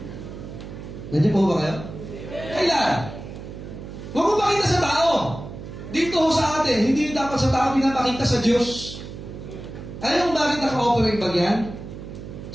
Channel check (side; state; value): right; noise; hum, 11 dB below the sound